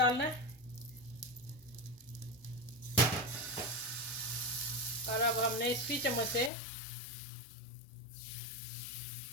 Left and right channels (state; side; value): drops out; right; at 6.5 s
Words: है। और अब हमने इसी चम्मच से